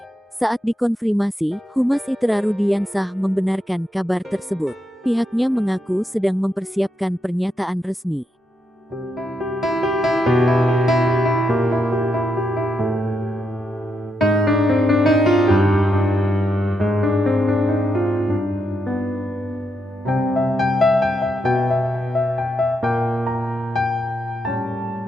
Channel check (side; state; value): both; normal; correlation 0.82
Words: Saat dikonfirmasi, Humas ITERA Rudiansah membenarkan kabar tersebut. Pihaknya mengaku sedang mempersiapkan pernyataan resmi.